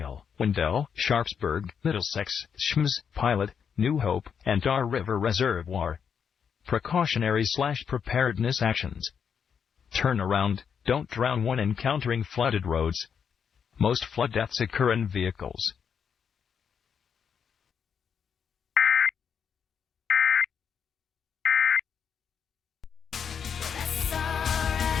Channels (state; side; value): quieter; right; 7.1 dB